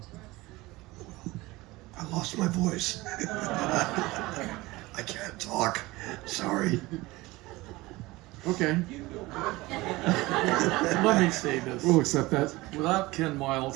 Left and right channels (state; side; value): quieter; left; 20.6 dB